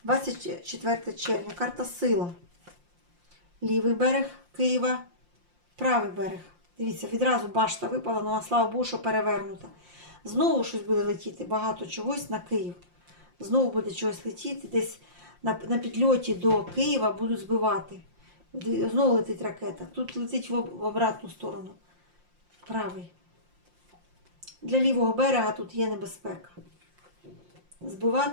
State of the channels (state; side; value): late; left; 5.7 ms